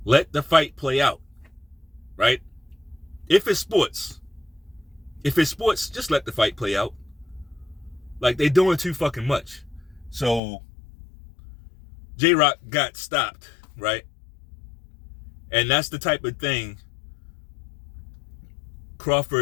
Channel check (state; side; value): drops out; right; at 10.4 s